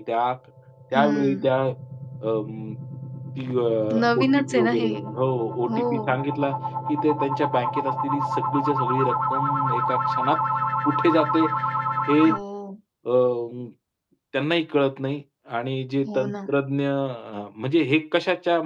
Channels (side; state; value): both; identical; correlation 1.00